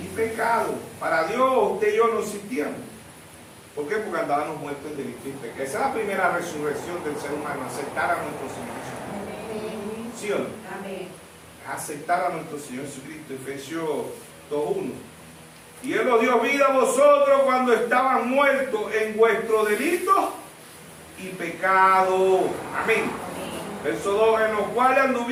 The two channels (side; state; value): both; identical; correlation 1.00